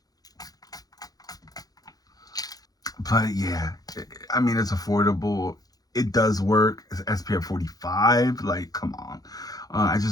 But yeah, I mean, it's affordable. It does work. It's SPF 45. Like, come on. I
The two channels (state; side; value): late; right; 0.18 ms